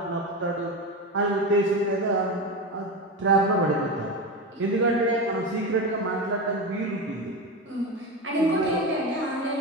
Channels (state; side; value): normal; both; correlation 0.20